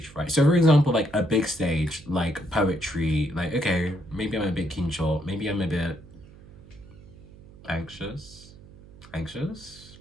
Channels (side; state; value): right; noise; hum, 21 dB below the sound